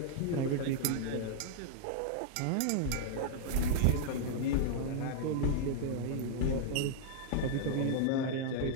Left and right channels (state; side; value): different; both; correlation -0.01